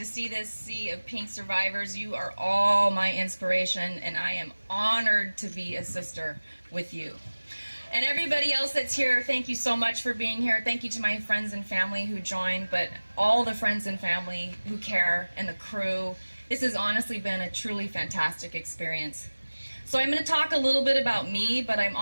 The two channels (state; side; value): inverted; both; correlation -1.00